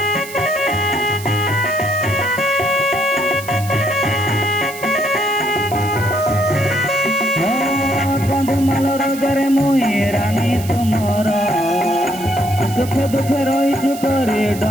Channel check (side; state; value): right; noise; hiss, 14 dB below the sound